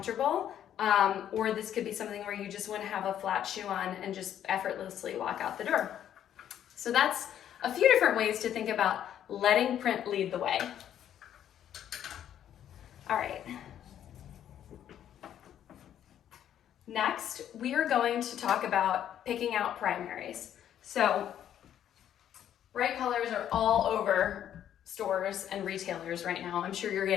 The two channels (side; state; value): right; quieter; 10.4 dB